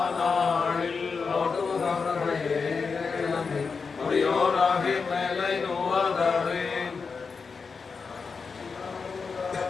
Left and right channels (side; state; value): right; quieter; 5.1 dB